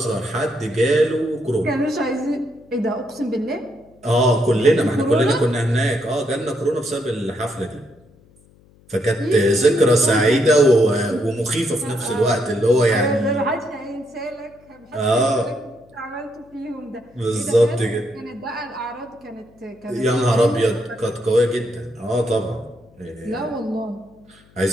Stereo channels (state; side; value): noise; left; hum, 29 dB below the sound